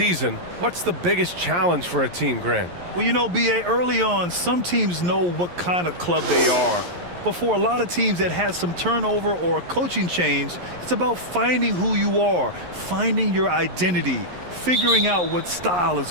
what's the biggest challenge for a team, Grant? Well, you know, B.A., early on, some teams know what kind of club they are. But for a lot of teams that had some turnover or a coaching change, it's about finding who you are, finding your identity, figuring out what style is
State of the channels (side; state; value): left; late; 11 ms